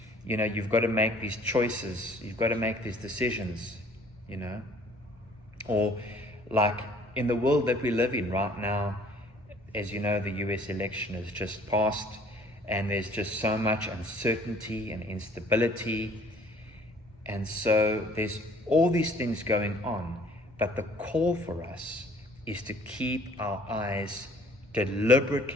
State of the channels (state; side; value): normal; both; correlation 0.55